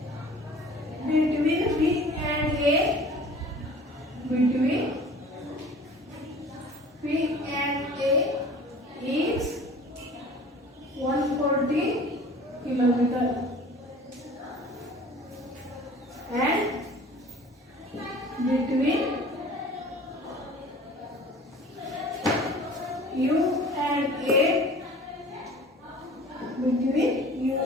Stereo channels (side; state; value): both; normal; correlation 0.45